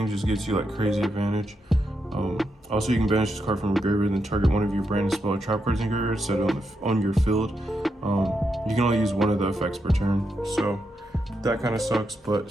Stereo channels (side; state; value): both; normal; correlation 0.83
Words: just gets you like crazy advantage. Also, you can banish this card from the graveyard and then target one of your branded spell or trap cards in your graveyard, set it on your field. You can only use 1 of the effects per turn, so that kind of sucks,